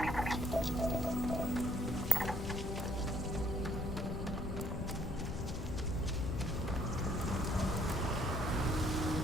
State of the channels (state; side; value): noise; left; rumble, 5 dB below the sound